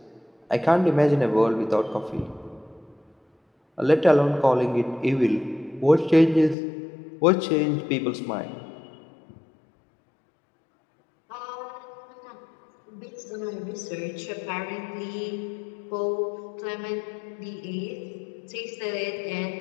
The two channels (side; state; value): right; drops out; at 6.6 s